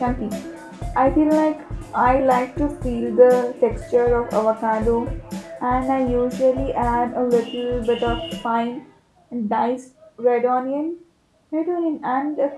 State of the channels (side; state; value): both; identical; correlation 1.00